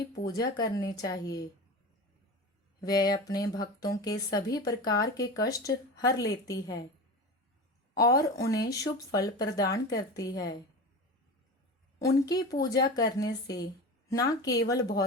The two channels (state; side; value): normal; both; correlation 0.29